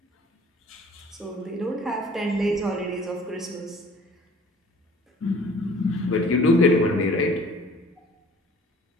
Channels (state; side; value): normal; both; correlation 0.50